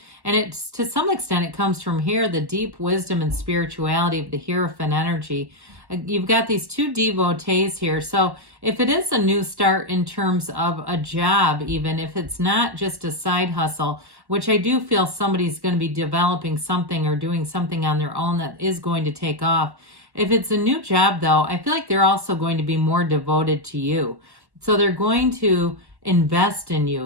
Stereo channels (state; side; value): late; left; 1.1 ms